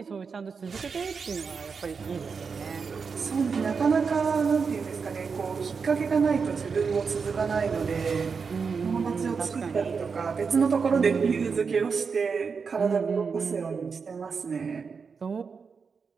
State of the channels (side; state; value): left; quieter; 5.5 dB